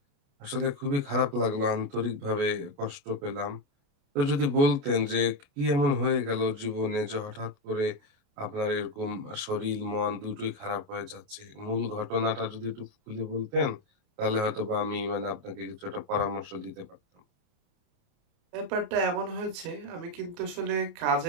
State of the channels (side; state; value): left; late; 28 ms